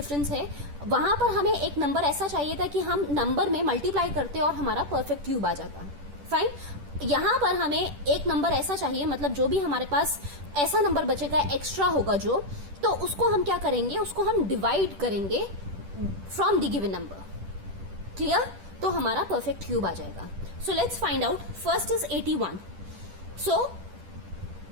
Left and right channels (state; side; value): late; left; 10 ms